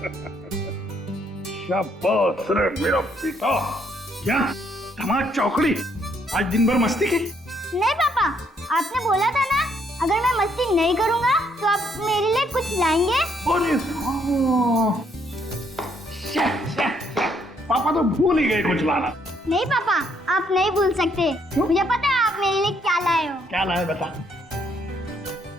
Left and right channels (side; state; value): both; normal; correlation 0.70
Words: शाबाश रे मेरा पिता। क्या धमाल चौकड़ी, आज दिन भर मस्ती की? नहीं पापा, आपने बोला था ना अगर मैं मस्ती नहीं करूंगा तो आप मेरे लिए कुछ लाएंगे। अरे पापा तो भूल ही गए कुछ लाना। नहीं पापा, आप नहीं भूल सकते। मुझे पता है आप मेरे लिए क्या लाए हो। क्या लाए बता।